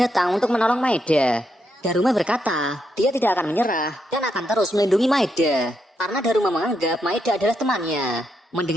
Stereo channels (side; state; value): both; normal; correlation 0.80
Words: untuk menolong Maeda. Daruma berkata, dia tidak akan menyerah dan akan terus melindungi Maeda. Karena Daruma menganggap Maeda adalah temannya.